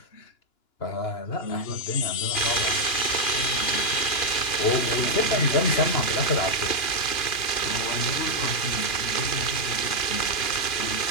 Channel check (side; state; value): right; late; 2.9 ms